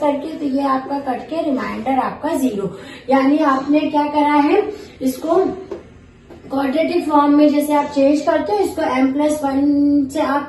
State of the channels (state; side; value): identical; both; correlation 1.00